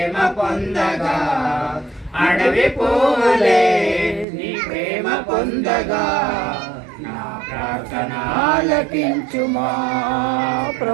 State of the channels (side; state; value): left; drops out; at 4.2 s